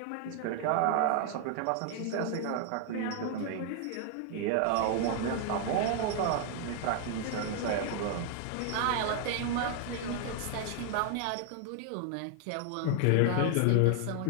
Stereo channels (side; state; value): both; different; correlation 0.00